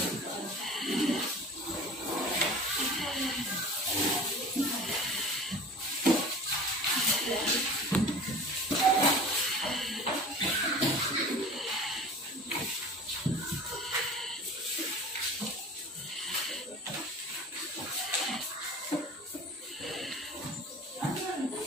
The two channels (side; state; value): both; normal; correlation 0.40